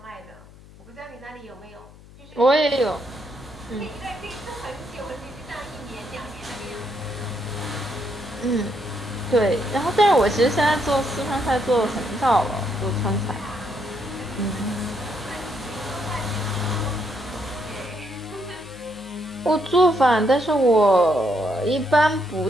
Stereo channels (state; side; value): noise; left; hum, 22 dB below the sound